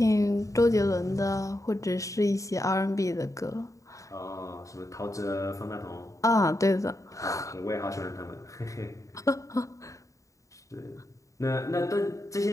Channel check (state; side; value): late; right; 0.16 ms